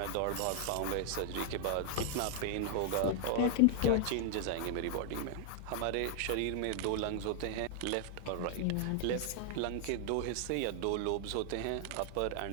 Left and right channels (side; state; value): both; different; correlation 0.00